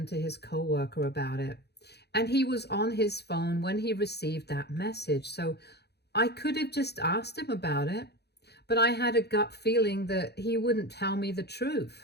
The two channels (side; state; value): right; late; 0.48 ms